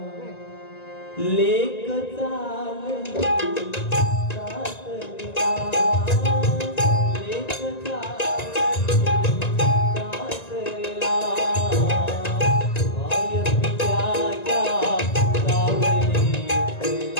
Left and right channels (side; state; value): right; late; 1.9 ms